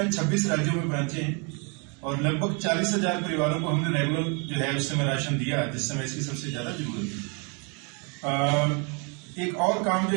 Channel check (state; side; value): quieter; left; 34.5 dB